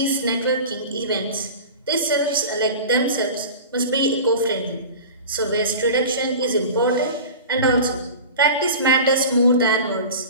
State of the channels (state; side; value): inverted; both; correlation -0.35